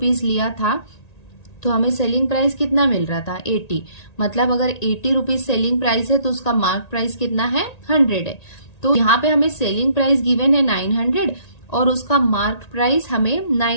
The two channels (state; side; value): late; right; 1.9 ms